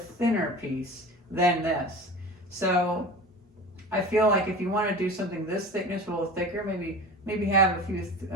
piece than this. So I feel like if you want to do something this thickness, a little thicker, maybe have a few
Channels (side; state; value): both; normal; correlation 0.35